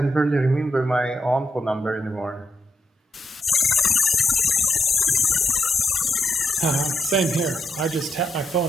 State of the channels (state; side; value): normal; both; correlation 0.80